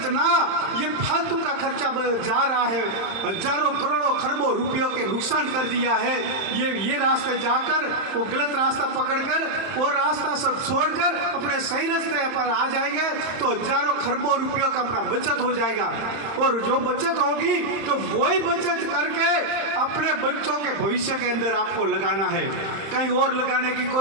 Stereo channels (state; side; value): late; left; 31 ms